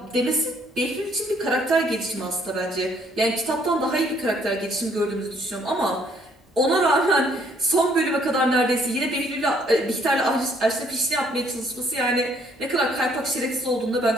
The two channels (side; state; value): both; normal; correlation 0.65